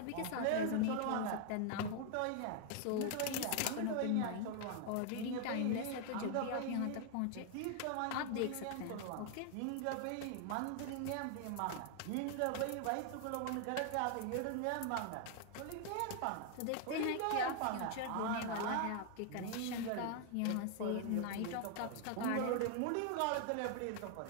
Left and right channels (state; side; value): different; both; correlation 0.00